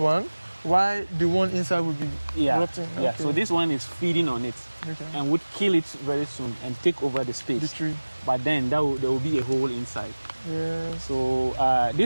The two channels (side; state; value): both; inverted; correlation -1.00